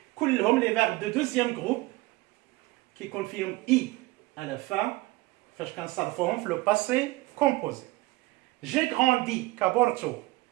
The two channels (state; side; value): quieter; left; 20.8 dB